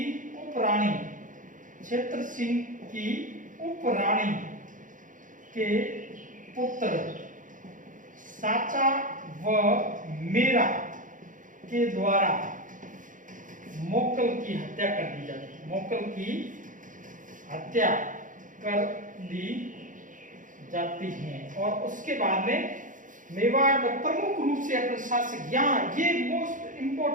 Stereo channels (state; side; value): late; left; 0.38 ms